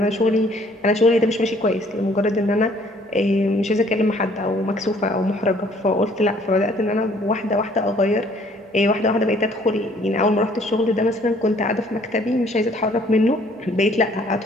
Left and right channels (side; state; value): both; normal; correlation 0.60